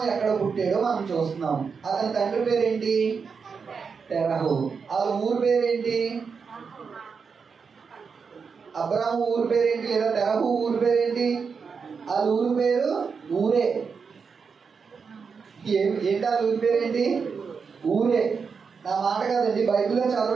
ఎక్కడ పుట్టాడో మనం చూస్తున్నాం. అతని తండ్రి పేరేంటి? తెరహు. వాళ్ళ ఊరు పేరేంటి? అబ్రాము ఊరు పేరేంటి? లేదా తెరహు ఊరు పేరేంటి? వాళ్ళ ఊరు పేరు ఊరే. ఏంటి వాళ్ళ ఊరి పేరేంటి? ఊరే. నా మాట కాదండి, బైబిల్లో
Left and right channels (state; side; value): quieter; left; 5.6 dB